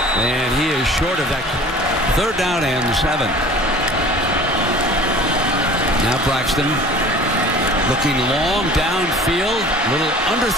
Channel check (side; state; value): both; normal; correlation 0.44